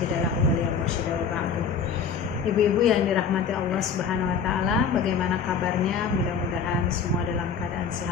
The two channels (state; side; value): quieter; right; 6.1 dB